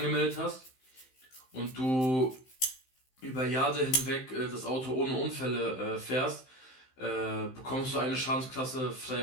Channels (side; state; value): right; late; 15 ms